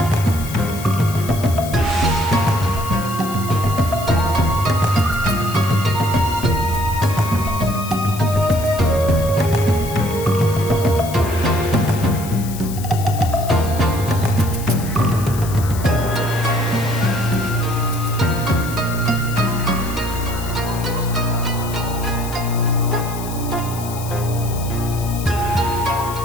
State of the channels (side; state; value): left; noise; hiss, 13 dB below the sound